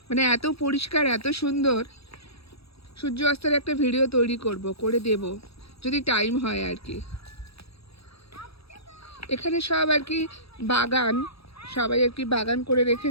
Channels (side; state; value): right; late; 0.77 ms